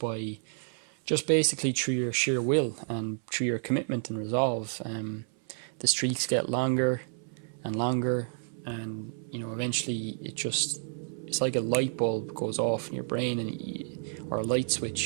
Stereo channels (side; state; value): left; silent; 58 dB below the other